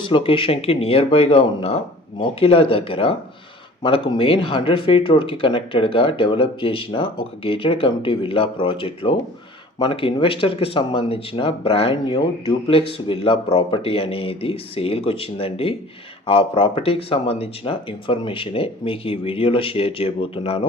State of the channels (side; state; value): both; normal; correlation 0.47